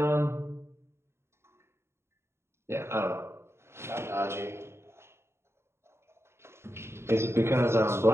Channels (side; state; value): left; late; 0.12 ms